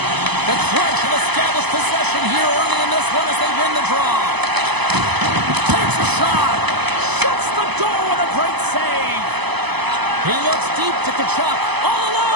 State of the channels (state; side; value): late; left; 0.99 ms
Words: The Crunch have established possession here early in this one as they win the draw. Takes a shot. Shuts the door with a great save. He looks deep to Tkachuk. All